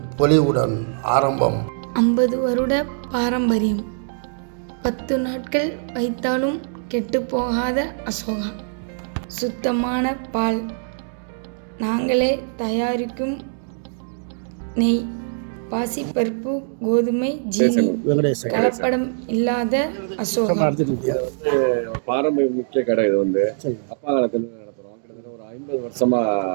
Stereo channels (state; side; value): silent; left; digital silence